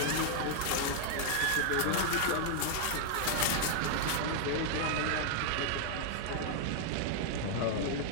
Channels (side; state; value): both; different; correlation -0.01